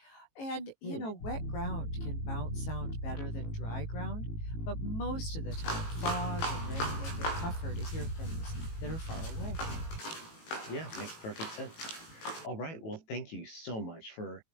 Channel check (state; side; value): late; right; 18 ms